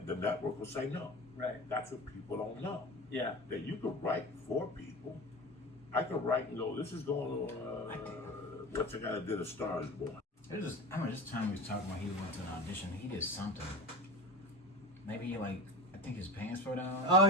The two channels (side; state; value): both; normal; correlation 0.31